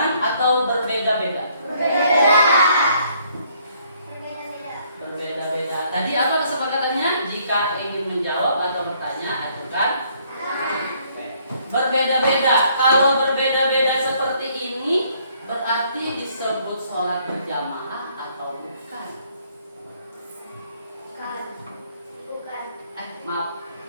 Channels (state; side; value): inverted; both; correlation -0.66